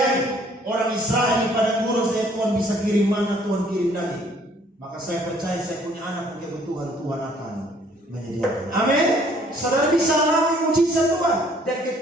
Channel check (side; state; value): both; normal; correlation 0.60